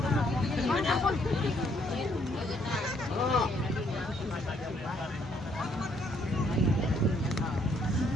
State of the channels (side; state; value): both; normal; correlation 0.68